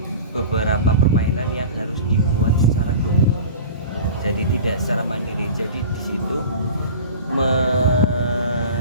beberapa permainan yang harus dibuat secara grup. Jadi tidak secara mandiri. Jadi di situ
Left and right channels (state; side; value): inverted; both; correlation -0.36